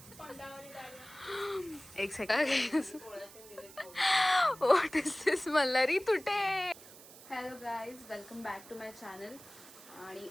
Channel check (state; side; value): noise; right; hiss, 19 dB below the sound